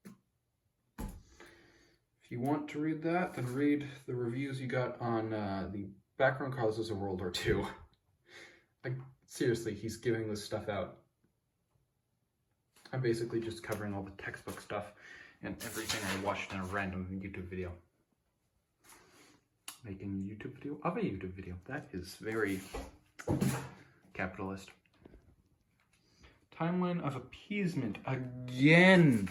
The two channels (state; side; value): identical; both; correlation 1.00